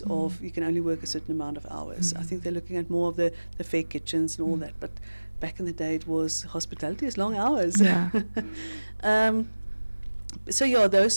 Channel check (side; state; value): both; inverted; correlation -1.00